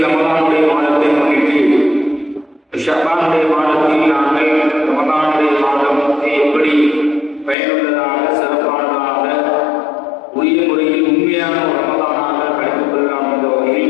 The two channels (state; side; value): drops out; right; at 7.6 s